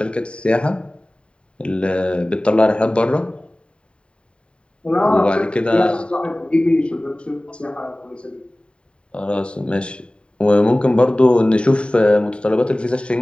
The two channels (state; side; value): late; right; 0.055 ms